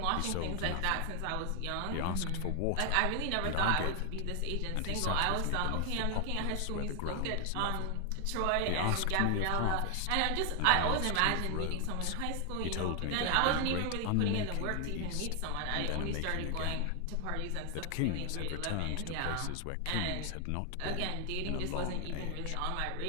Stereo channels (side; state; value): both; different; correlation 0.00